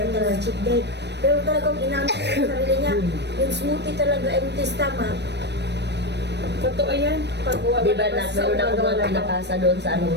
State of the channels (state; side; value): late; left; 0.50 ms